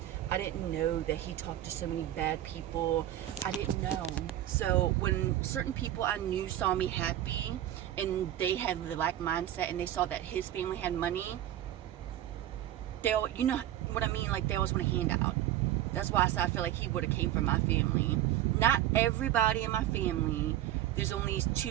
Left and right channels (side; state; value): left; quieter; 12.7 dB